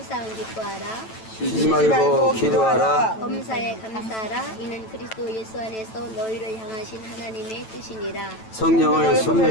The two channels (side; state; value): right; late; 9.1 ms